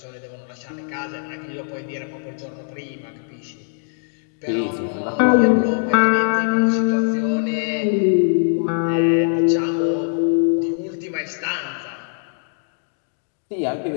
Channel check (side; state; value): right; silent; digital silence